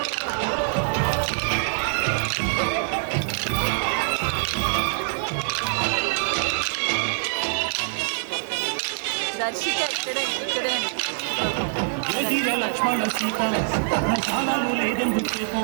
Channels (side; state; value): left; silent; 62 dB below the other